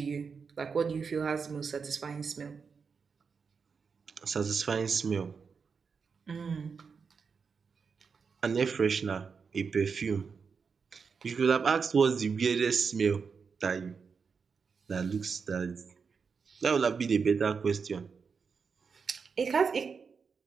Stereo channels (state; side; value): quieter; left; 5.6 dB